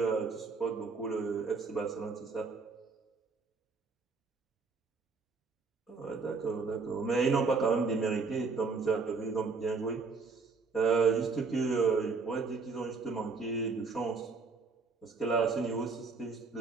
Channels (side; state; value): left; quieter; 4.4 dB